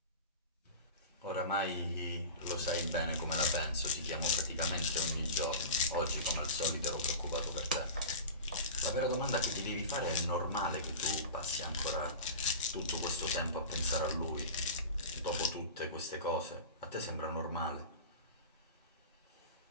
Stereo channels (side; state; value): both; inverted; correlation -0.30